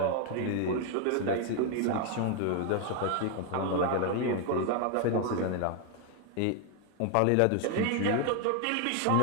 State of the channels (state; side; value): different; both; correlation 0.01